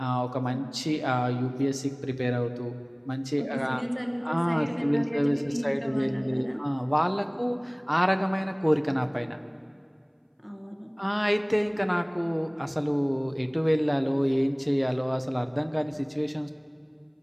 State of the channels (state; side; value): identical; both; correlation 1.00